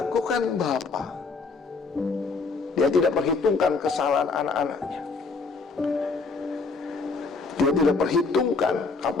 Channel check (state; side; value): quieter; right; 4.4 dB